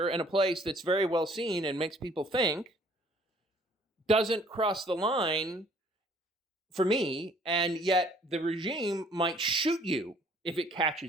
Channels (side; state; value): both; normal; correlation 0.58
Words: in a place that's very well seen and makes people think doesn't cross the line for me, and yet the regime might shoot you if it